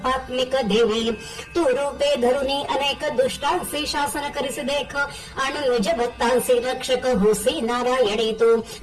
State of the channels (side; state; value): both; identical; correlation 1.00